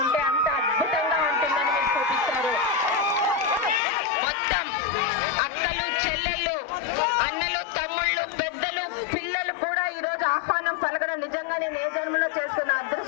ఉంటే అంత అద్భుతంగా ఉంటుందని మీరు చూపించారు. మొత్తం అక్కలు, చెల్లెళ్ళు, అన్నలు, తమ్ముళ్ళు, పెద్దలు, పిల్లలు కూడా ఈ రోజు ఆహ్వానం పలకడం నిజంగా నేను ఏ జన్మలో చేసుకున్న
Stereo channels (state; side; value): drops out; right; at 3.8 s